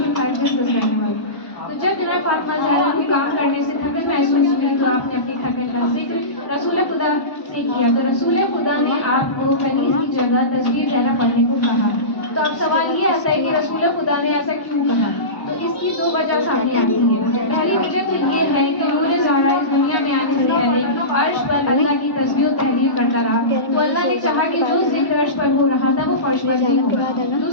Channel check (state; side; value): late; right; 1.1 ms